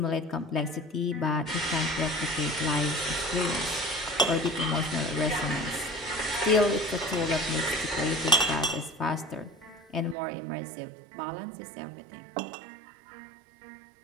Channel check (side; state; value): left; drops out; at 10.2 s